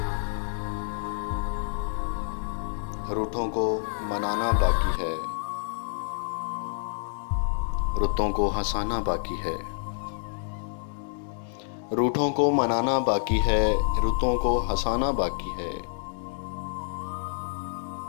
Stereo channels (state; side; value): silent; right; digital silence